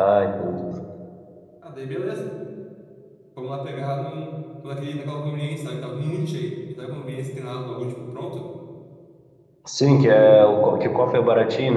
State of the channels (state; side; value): identical; both; correlation 1.00